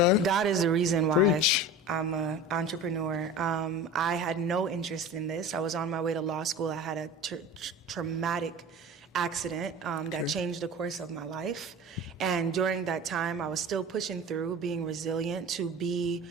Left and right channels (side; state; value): both; normal; correlation 0.35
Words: God is the reason why I'm an entrepreneur. I had no interest in this. I was on my way to law school. I had a traumatic accident that changed the course of my life. And during that time, I was still pushing through, being resilient to be